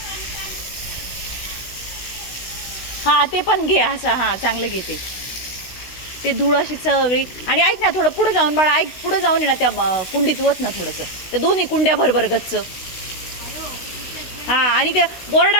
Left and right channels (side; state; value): right; late; 16 ms